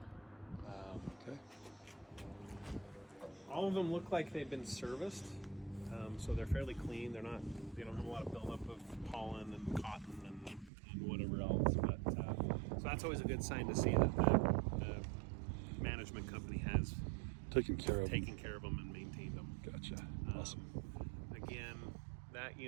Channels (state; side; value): drops out; left; at 10.7 s